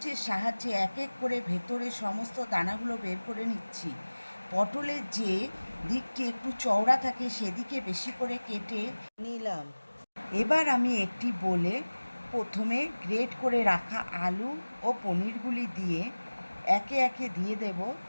সাহায্যে এক এক করে ভেতরে সমস্ত দানাগুলো বের করে নিচ্ছি। পটলের যে দিকটি একটু চওড়া থাকে সেদিকে বেশি করে কেটে নিলাম। এবার আমি একটি বোলে প্রথমে গ্রেট করে রাখা আলু ও পনিরগুলি দিয়ে একে একে দিয়ে দেব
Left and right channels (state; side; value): inverted; both; correlation -1.00